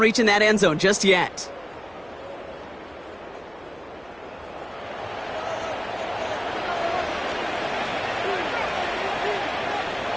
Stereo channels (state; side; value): noise; right; hum, 29 dB below the sound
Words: that end zone just yet.